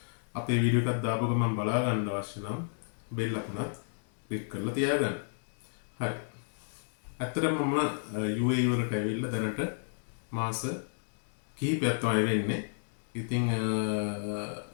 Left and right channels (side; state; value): right; silent; 57 dB below the other